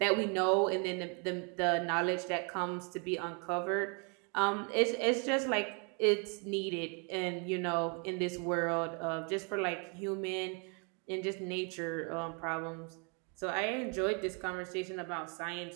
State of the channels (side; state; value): left; quieter; 36.5 dB